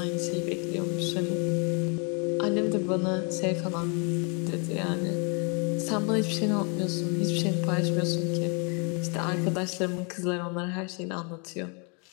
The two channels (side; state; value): right; quieter; 35.5 dB